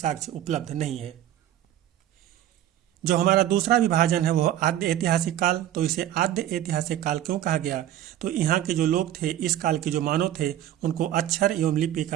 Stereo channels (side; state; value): left; quieter; 12.2 dB